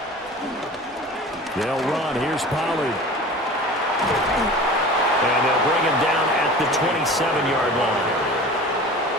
They'll run. Here's Pollard. And they'll bring him down at the 27-yard line.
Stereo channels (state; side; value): normal; both; correlation 0.39